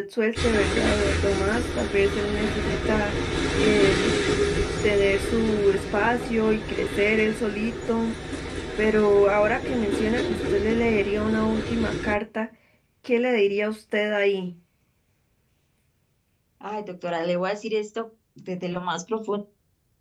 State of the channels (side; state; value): both; identical; correlation 1.00